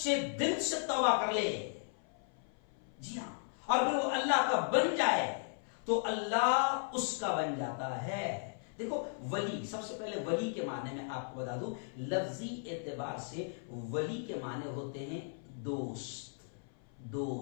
دل سے توبہ کر لے، جی ہاں، اور پھر وہ اللہ کا بن جائے تو اللہ اس کا بن جاتا ہے. دیکھو ولی، سب سے پہلے ولی کے معنی میں آپ کو بتا دوں، لفظی اعتبار سے ولی کے معنی ہوتے ہیں دوست.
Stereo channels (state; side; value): silent; right; 54 dB below the other